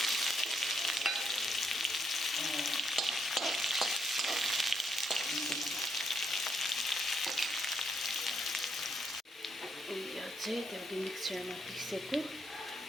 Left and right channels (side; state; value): both; normal; correlation 0.77